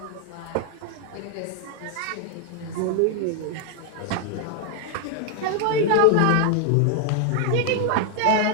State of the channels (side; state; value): both; different; correlation 0.00